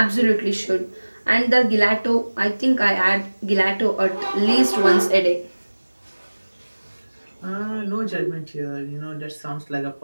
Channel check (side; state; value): both; inverted; correlation -1.00